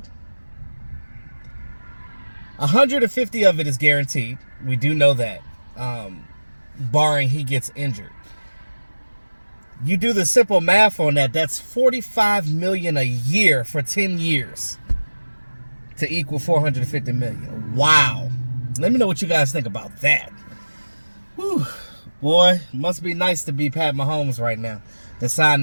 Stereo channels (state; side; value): inverted; both; correlation -1.00